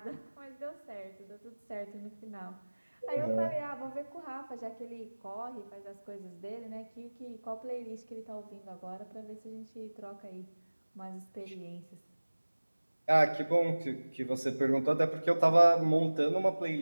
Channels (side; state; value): both; inverted; correlation -1.00